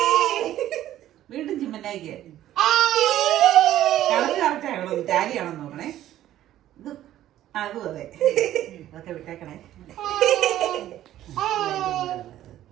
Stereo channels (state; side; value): quieter; left; 12.9 dB